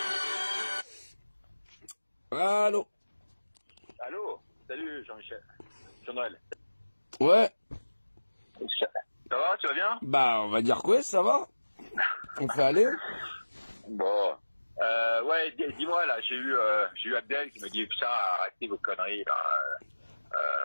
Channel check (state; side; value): inverted; both; correlation -1.00